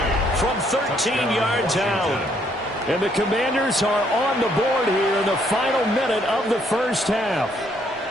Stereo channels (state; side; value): normal; both; correlation 0.69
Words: From 13 yards out. And the Commanders are on the board here in the final minute of the first half.